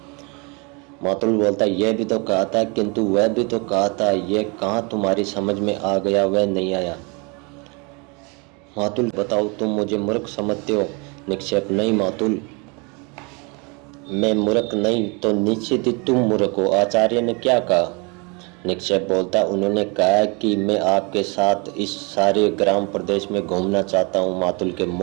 मातुल बोलता, यह भी तो कहा था, किंतु वह भी तो कहा था। यह कहाँ तुम्हारी समझ में आ गया? वह नहीं आया। मातुल, बताओ, तुम मुझे मूर्ख समझते हो? निक्षेप नहीं मातुल, मैं मूर्ख नहीं तो निश्चित ही तुम मूर्ख हो। आचार्य ने क्या कहा? निक्षेप बोलता, उन्होंने कहा कि मैं आपके साथ इस सारे ग्राम प्रदेश में घूमना चाहता हूँ। मातुल के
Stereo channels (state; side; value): quieter; left; 30.8 dB